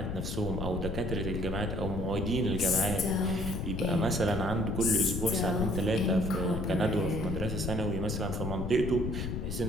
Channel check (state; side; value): noise; left; rumble, 3 dB below the sound